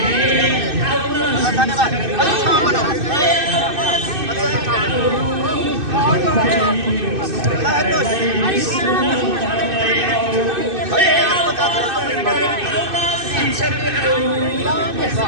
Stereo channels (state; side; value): late; left; 2.6 ms